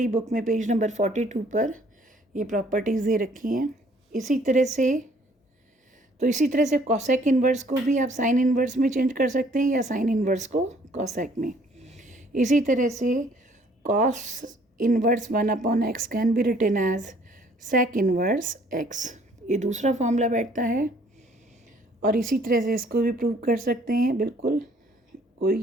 बुक में पेज नंबर 42 पर ये प्रॉपर्टीज़ दे रखी हैं। इसी तरह से कोसेक इन्वर्स को भी आप साइन इन्वर्स में चेंज कर सकते हैं, या साइन इन्वर्स को कोसेक में। इसी तरह से cos inverse 1/x can be written as sec inverse x। ये दूसरा फॉर्मूला बैठता है, और इसी तरह से इसको भी प्रूव कर सकते हैं, बिल्कुल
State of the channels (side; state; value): both; normal; correlation 0.60